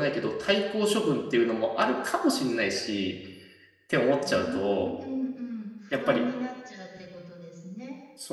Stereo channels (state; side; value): identical; both; correlation 1.00